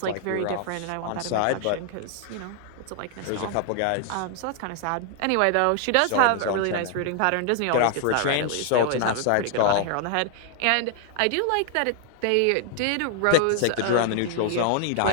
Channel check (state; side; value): different; both; correlation 0.00